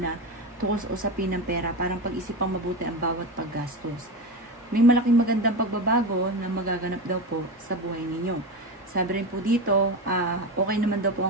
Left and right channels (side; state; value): both; normal; correlation 0.20